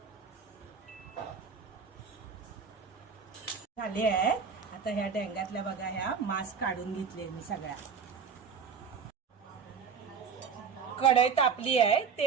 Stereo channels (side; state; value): left; quieter; 6.2 dB